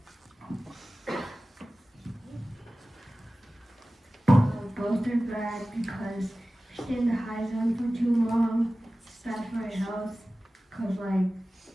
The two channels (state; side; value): normal; both; correlation 0.96